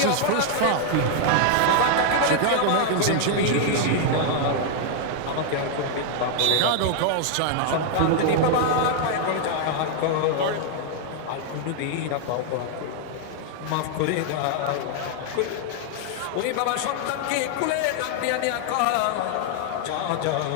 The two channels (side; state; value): both; different; correlation 0.00